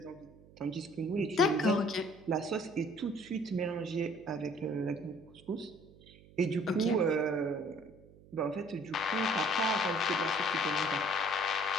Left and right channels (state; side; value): noise; right; hum, 23 dB below the sound